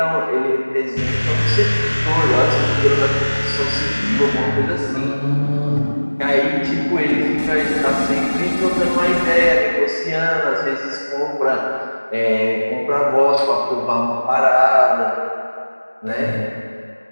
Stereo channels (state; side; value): inverted; both; correlation -1.00